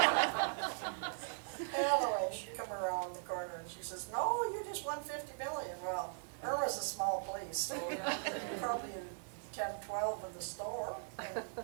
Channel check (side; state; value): left; silent; digital silence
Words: Anyway, she come around the corner and she says, no, you just won $50 million. Well, Irma's a small place, so probably 10, 12 in the store. And,